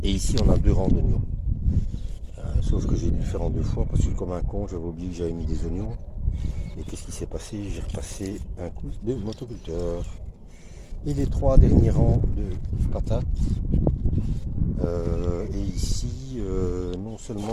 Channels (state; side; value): identical; both; correlation 1.00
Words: Et ici, on a 2 rangs d'oignons. Sauf que j'ai dû le faire en 2 fois parce que comme un con, j'avais oublié que j'avais mis des oignons. Et qu'est-ce qui s'est passé? J'ai repassé un coup de motoculteur. Et les 3 derniers rangs de patates. Et ici, non